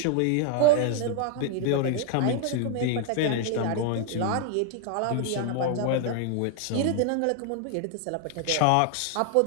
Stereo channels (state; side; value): different; both; correlation 0.00